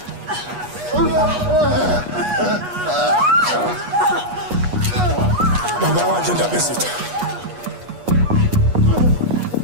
Baba wathi ndaba ezitha.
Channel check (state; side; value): late; left; 8.3 ms